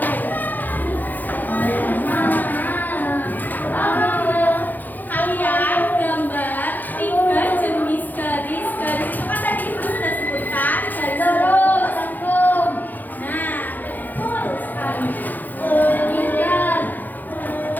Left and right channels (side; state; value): right; late; 0.085 ms